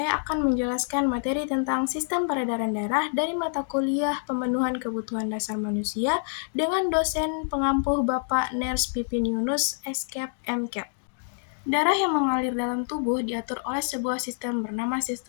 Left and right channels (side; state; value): right; silent; digital silence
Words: akan menjelaskan materi tentang sistem peredaran darah dari mata kuliah Pemenuhan Kebutuhan Dasar Manusia dengan dosen pengampuh Bapak Ners Pipin Yunus, SCAP MCAP. Darah yang mengalir dalam tubuh diatur oleh sebuah sistem bernama